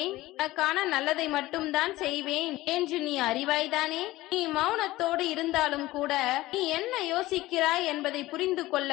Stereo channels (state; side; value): quieter; right; 17.8 dB